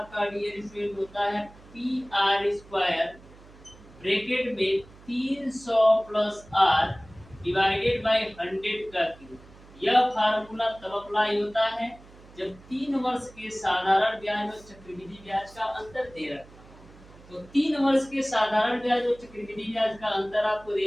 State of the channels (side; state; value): right; noise; hum, 22 dB below the sound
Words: डियर स्टूडेंट होता है पी आर स्क्वायर ब्रैकेट में 300 प्लस आर डिवाइडेड बाय 100 का क्यूब। यह फार्मूला तब अप्लाई होता है जब 3 वर्ष के साधारण ब्याज और चक्रवृद्धि ब्याज का अंतर दे रखा है। तो 3 वर्ष के साधारण ब्याज और चक्रवृद्धि ब्याज का अंतर आपको दे